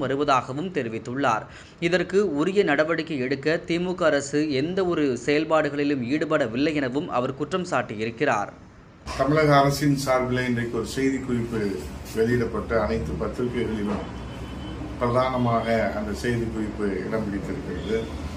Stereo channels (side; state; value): both; identical; correlation 1.00